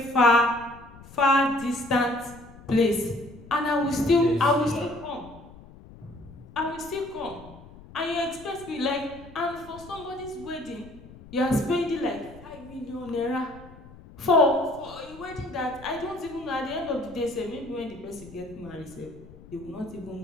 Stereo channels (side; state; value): left; noise; rumble, 19 dB below the sound